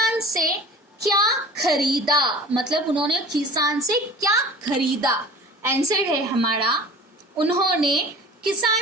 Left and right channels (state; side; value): normal; both; correlation 0.42